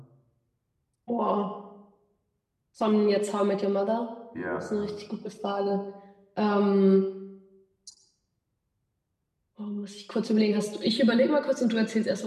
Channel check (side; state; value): both; identical; correlation 1.00